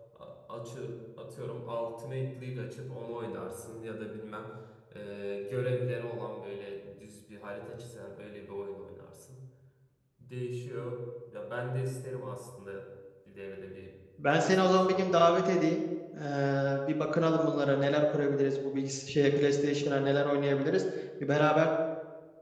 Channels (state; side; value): identical; both; correlation 1.00